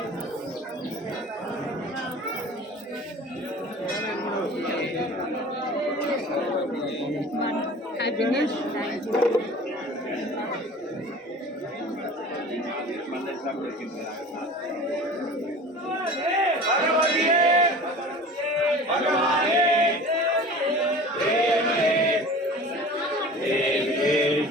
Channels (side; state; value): both; normal; correlation 0.40